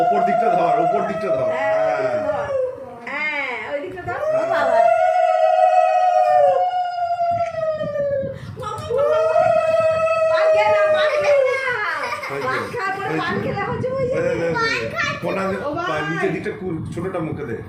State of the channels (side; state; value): both; identical; correlation 1.00